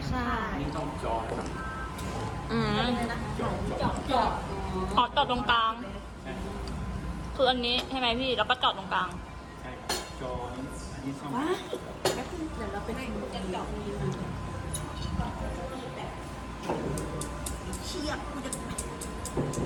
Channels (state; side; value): identical; both; correlation 1.00